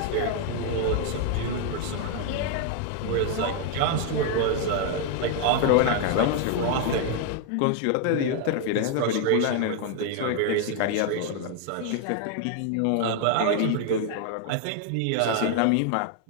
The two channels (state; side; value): different; both; correlation 0.00